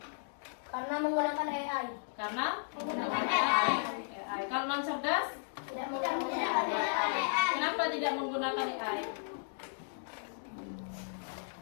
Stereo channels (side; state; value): right; silent; digital silence